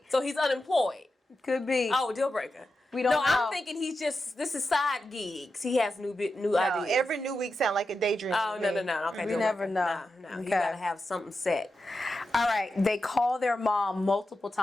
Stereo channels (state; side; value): normal; both; correlation 0.89